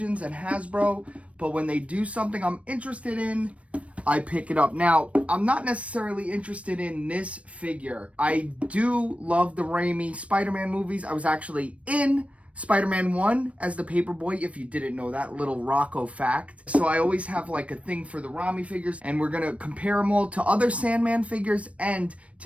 and Hasbro, but when they do something I'm interested in, I pick it up. Now, I'm not necessarily interested in this figure. I do love the Raimi Spider-Man movies. I was actually in Spider-Man 1 as the paperboy, if you didn't know that little Rocco fact. So I always have like a thing for the Raimi figures, and we're gonna compare them all to other Sandman figures and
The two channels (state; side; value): late; left; 0.064 ms